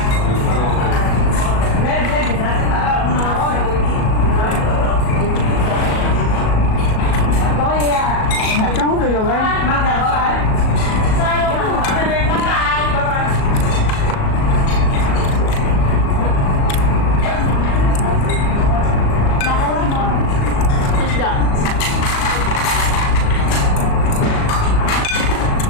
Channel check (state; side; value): late; right; 37 ms